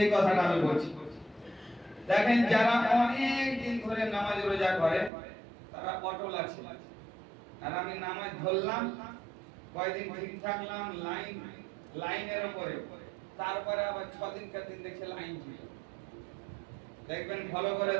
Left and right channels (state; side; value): drops out; left; at 5.1 s